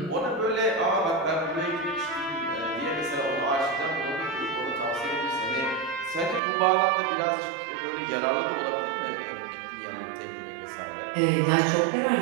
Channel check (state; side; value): drops out; left; at 6.4 s